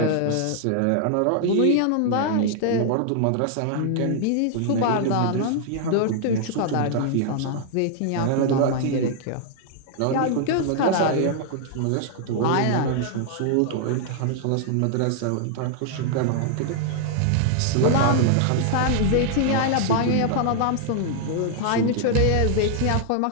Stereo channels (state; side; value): different; both; correlation 0.00